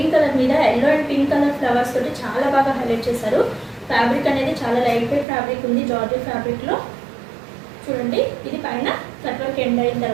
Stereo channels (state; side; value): drops out; left; at 5.2 s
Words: కలర్ మీద yellow and pink colour flowers తోటి చాలా బాగా హైలైట్ చేశారు. ఫ్యాబ్రిక్ అనేది చాలా లైట్ వెయిట్ ఫ్యాబ్రిక్ ఉంది, జార్జెట్ ఫ్యాబ్రిక్లో. చూడండి, ఇది పైన కట్ వర్క్ ఎండ్ అయిన